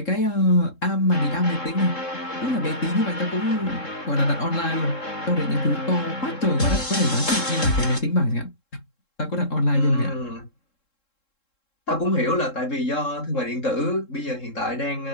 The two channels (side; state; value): right; late; 3.7 ms